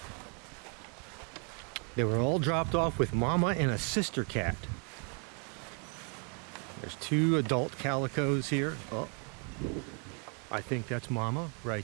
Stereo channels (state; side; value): quieter; left; 38.6 dB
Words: They were all dropped off with Mama and a sister cat. There's 2 adult calicos here. Oh, I think that's Mama